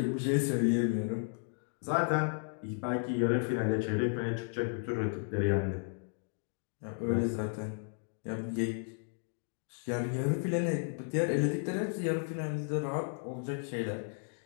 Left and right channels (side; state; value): right; silent; 55 dB below the other